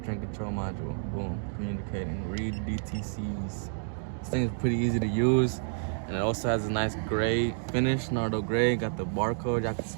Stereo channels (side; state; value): left; silent; digital silence